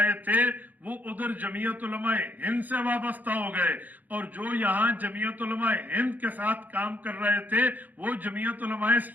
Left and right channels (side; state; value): left; late; 0.083 ms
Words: تھے وہ ادھر جمعیت علماء ہند سے وابستہ ہو گئے، اور جو یہاں جمعیت علماء ہند کے ساتھ کام کر رہے تھے وہ جمعیت علماء